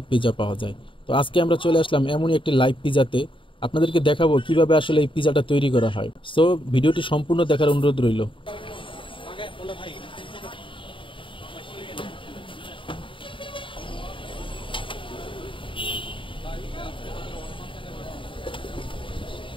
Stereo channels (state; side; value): late; right; 0.25 ms